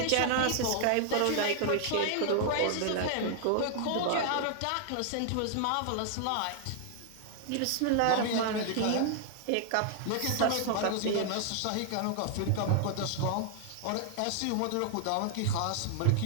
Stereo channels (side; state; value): both; different; correlation 0.00